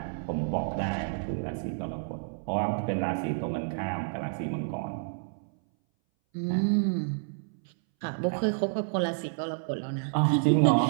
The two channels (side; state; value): left; silent; 58 dB below the other